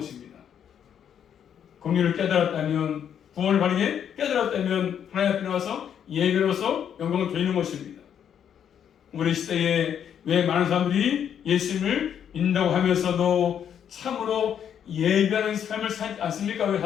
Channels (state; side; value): quieter; right; 8.8 dB